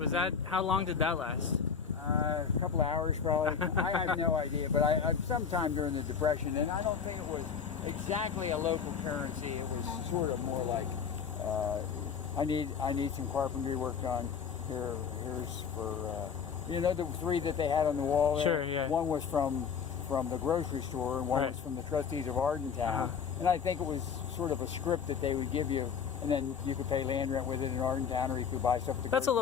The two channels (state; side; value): quieter; right; 6.6 dB